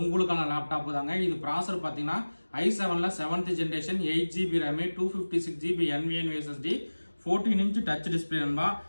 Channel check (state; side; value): inverted; both; correlation -1.00